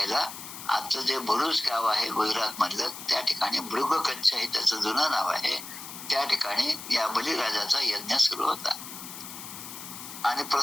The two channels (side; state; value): left; noise; hiss, 11 dB below the sound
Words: आजचं जे भरूच गाव आहे गुजरात मधलं, त्या ठिकाणी भृगकच्छ हे त्याचं जुनं नाव आहे. त्या ठिकाणी या बलीराजाचा यज्ञ सुरू होता आणि